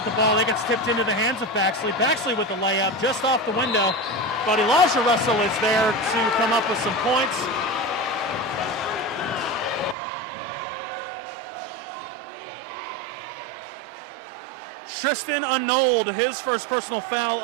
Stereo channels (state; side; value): drops out; left; at 10.0 s